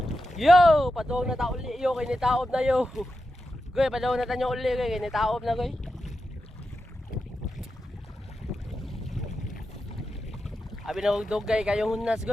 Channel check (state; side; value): normal; both; correlation 0.89